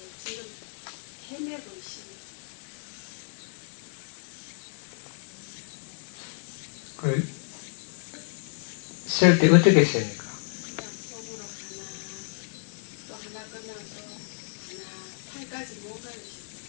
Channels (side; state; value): right; silent; digital silence